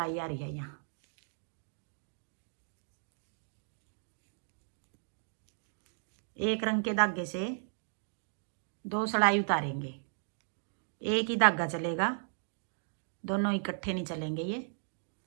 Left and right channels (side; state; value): left; silent; digital silence